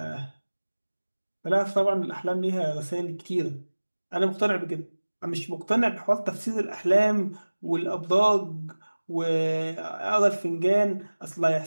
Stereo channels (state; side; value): inverted; both; correlation -1.00